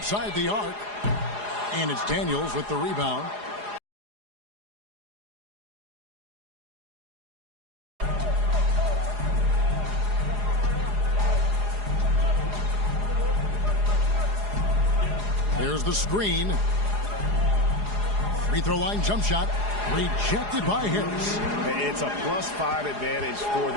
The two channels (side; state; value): left; late; 4.8 ms